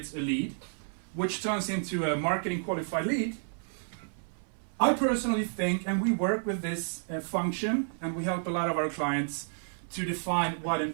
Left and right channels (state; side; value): silent; left; 57 dB below the other